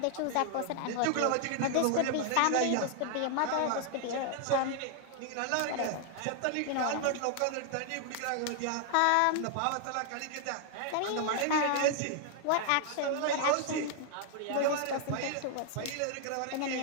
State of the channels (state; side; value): different; both; correlation 0.00